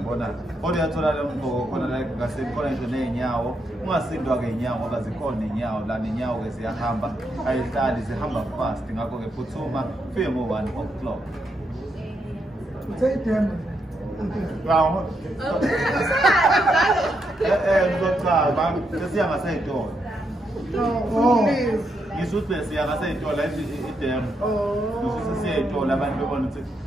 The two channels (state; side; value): normal; both; correlation 0.80